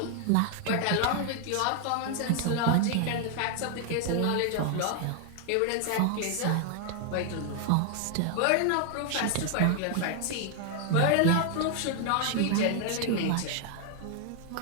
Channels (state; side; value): different; both; correlation 0.00